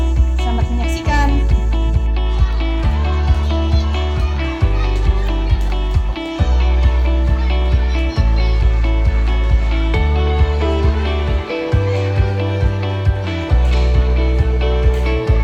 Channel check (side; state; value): both; identical; correlation 1.00